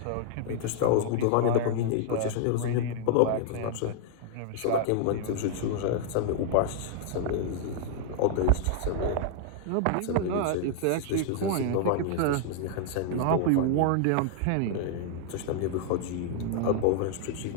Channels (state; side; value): different; both; correlation -0.01